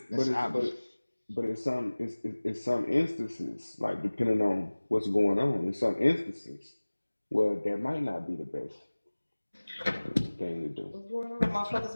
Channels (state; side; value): inverted; both; correlation -1.00